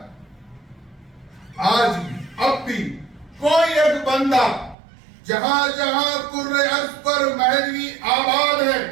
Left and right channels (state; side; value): drops out; left; at 4.8 s